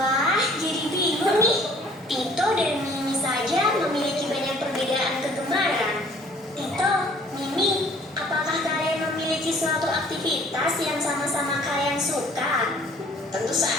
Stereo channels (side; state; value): both; normal; correlation 0.55